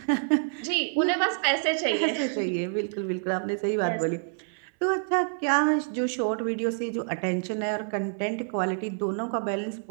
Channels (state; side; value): silent; left; 60 dB below the other